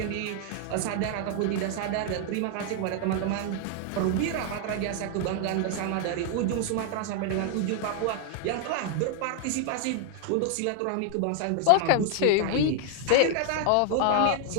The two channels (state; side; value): different; both; correlation 0.00